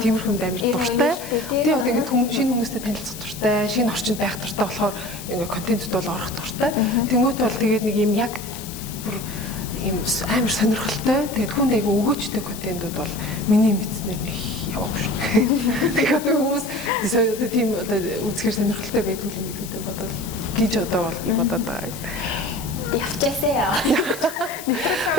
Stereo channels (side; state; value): left; noise; hiss, 13 dB below the sound